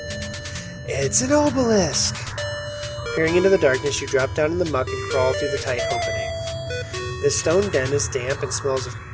It's an obelisk! Peering into the darkness, you drop down in the muck and crawl through the tight opening. This stone den is damp and smells of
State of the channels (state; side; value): identical; both; correlation 1.00